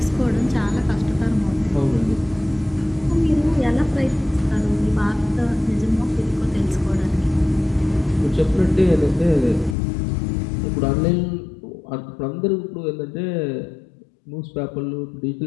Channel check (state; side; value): drops out; right; at 9.8 s